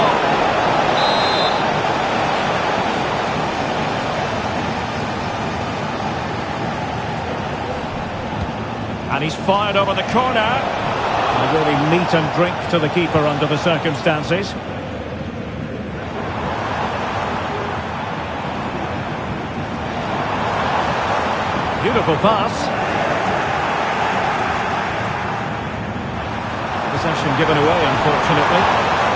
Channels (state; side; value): identical; both; correlation 1.00